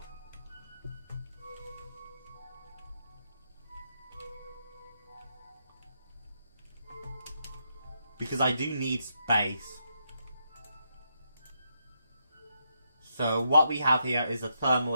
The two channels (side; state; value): both; inverted; correlation -0.79